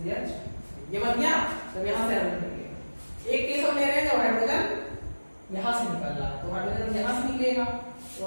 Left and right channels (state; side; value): inverted; both; correlation -1.00